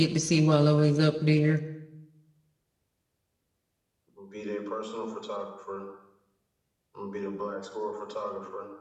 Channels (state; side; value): identical; both; correlation 1.00